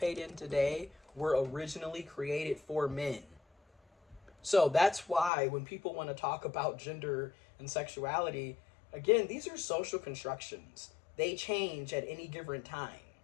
in today were originally created for men. So that's why when people want to talk about gender and sexuality, again, these are social constructions. They change at any given time.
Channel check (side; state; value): right; drops out; at 5.3 s